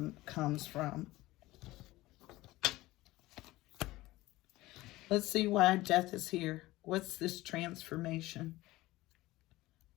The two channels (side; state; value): right; quieter; 18.3 dB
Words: comes from. Let's see why death is here. What's this transformation?